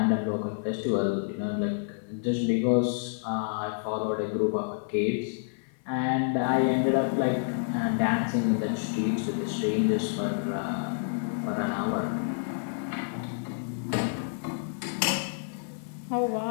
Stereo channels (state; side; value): silent; right; 59 dB below the other